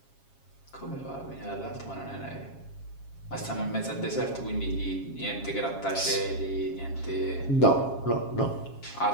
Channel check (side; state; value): right; late; 7.4 ms